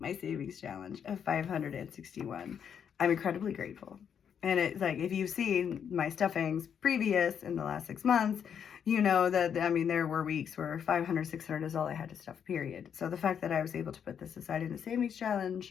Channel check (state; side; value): quieter; right; 7.9 dB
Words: savings challenge of 561. I'm incredibly grateful. And it's like, if you've seen my stuffings previous in the last 6 months, you know that, I mean, there were weeks where 500, 600 is all I had to stuff, period. So the fact that I was able to put this aside in the savings